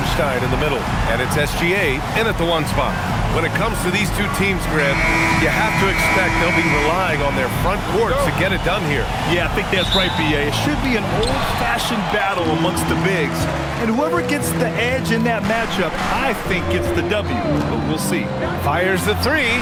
in the middle. And it's SGA in at the 1 spot. When it comes to these two teams, Grant, you have to expect they'll be relying on their front courts to get it done here. Yeah, I think that's right, B.A. It should be an old-fashioned battle amongst the bigs. And whoever gets the edge in that matchup, I think gets the W. But we'll see. Fires the 3.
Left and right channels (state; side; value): identical; both; correlation 1.00